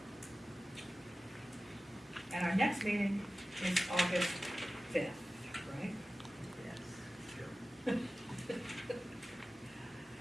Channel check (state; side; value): normal; both; correlation 0.96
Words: And our next meeting is August 5th, right? Yes.